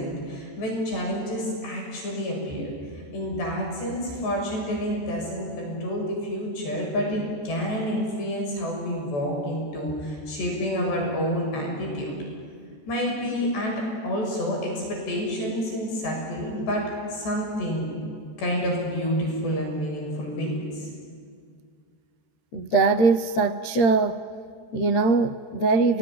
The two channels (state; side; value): late; right; 14 ms